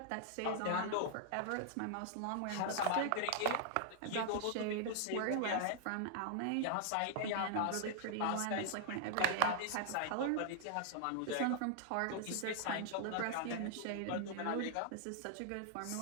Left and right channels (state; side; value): different; both; correlation 0.00